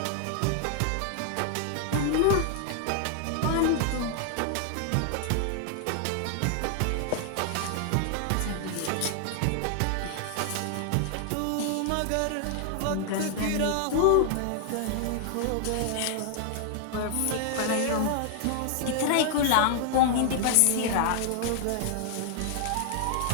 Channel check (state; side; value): different; both; correlation 0.00